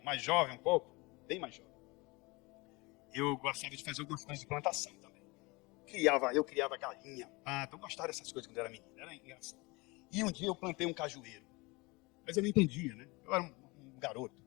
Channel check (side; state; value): right; quieter; 25.2 dB